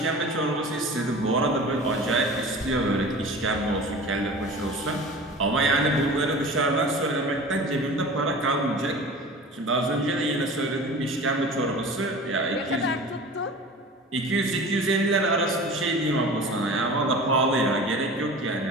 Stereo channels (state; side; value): normal; both; correlation 0.38